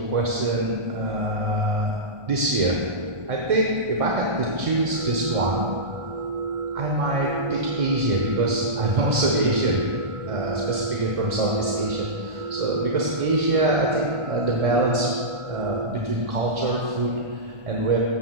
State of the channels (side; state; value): left; late; 1.4 ms